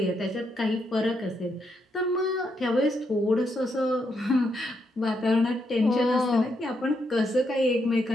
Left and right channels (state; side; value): normal; both; correlation 0.79